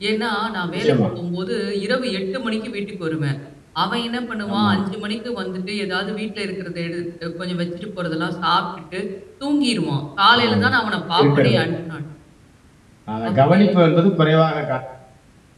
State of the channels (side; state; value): both; identical; correlation 1.00